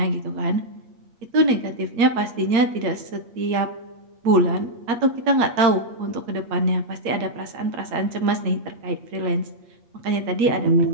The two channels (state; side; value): late; left; 8.8 ms